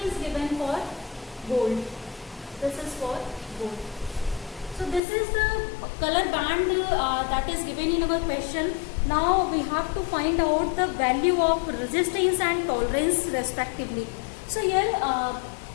given for gold. This is for gold. So this is the color band that is given in our question. Now we have to find out the value of resistance and tolerance respectively. So here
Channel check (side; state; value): right; drops out; at 5.0 s